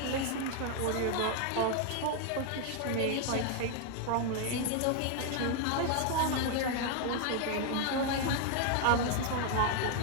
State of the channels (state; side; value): different; both; correlation 0.00